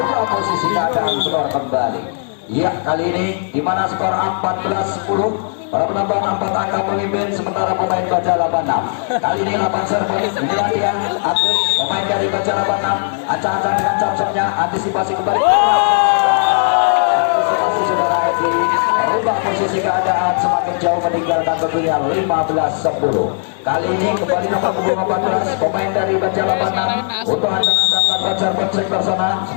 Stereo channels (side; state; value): right; silent; digital silence